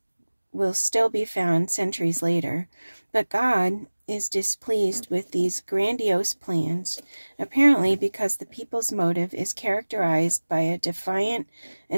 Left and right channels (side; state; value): both; inverted; correlation -1.00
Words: will still be found centuries later. But God is displeased with these grandiose plans, apparently because the people's motive is characterized by a defiant